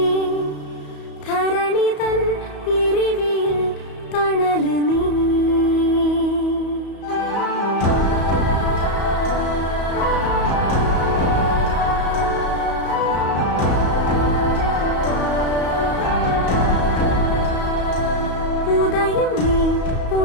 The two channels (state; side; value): late; right; 34 ms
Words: ധരണി തൻ ഇരിവിൽ തണല് നീ ഉദയം നീ